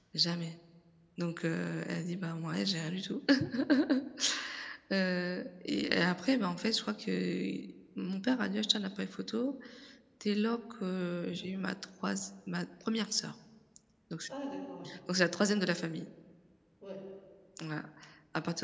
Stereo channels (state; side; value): identical; both; correlation 1.00